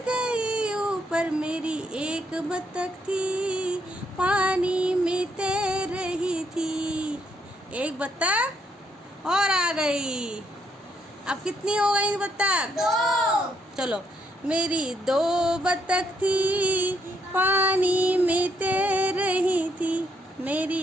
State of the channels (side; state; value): both; normal; correlation 0.73